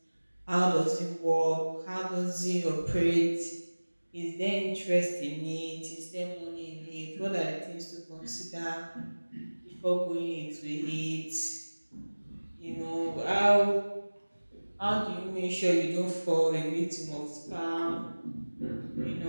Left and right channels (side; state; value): both; inverted; correlation -1.00